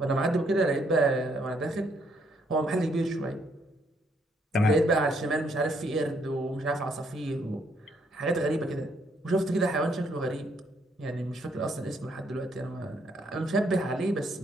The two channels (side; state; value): both; normal; correlation 0.71